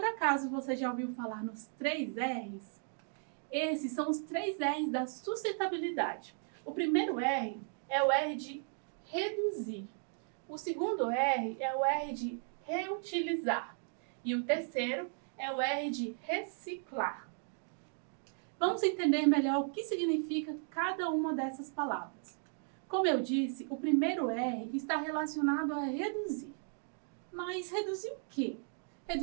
acaso você já ouviu falar nos 3 R's? Esses são os 3 R's da sustentabilidade. O primeiro R é o R de reduzir. O segundo R é o R de reutilizar. E o terceiro é o R de reciclar. Vamos entender melhor o que significa cada uma dessas palavras. Como eu disse, o primeiro R está relacionado a reduzir. Mas reduzir o quê?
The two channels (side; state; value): left; silent; 54 dB below the other